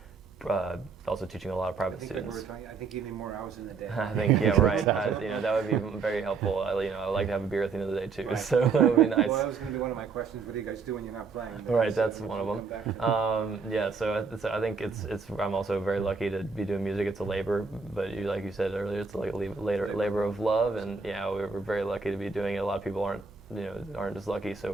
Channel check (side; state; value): left; quieter; 4.9 dB